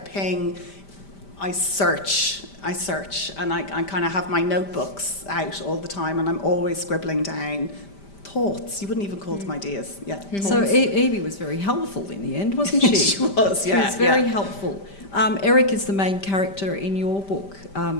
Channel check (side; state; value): right; late; 5.1 ms